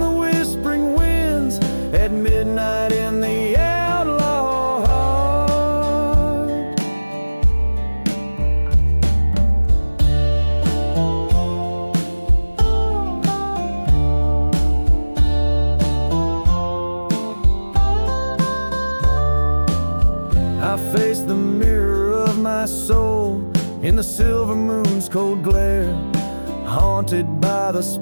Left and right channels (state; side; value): inverted; both; correlation -1.00